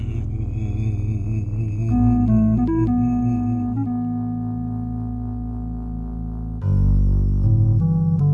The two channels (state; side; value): identical; both; correlation 1.00